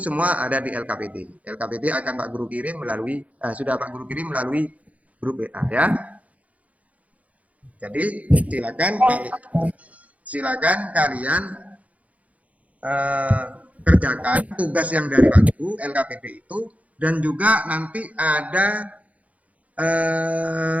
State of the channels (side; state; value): left; late; 0.069 ms